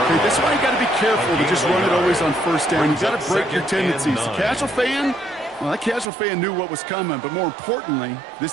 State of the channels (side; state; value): left; drops out; at 6.1 s